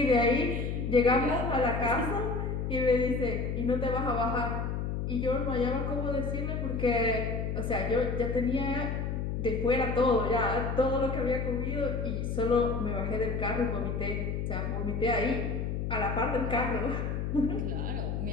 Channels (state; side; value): noise; left; hum, 2 dB below the sound